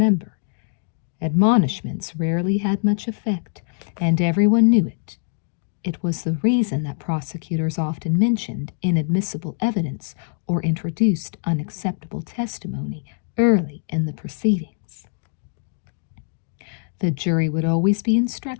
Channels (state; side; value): silent; right; digital silence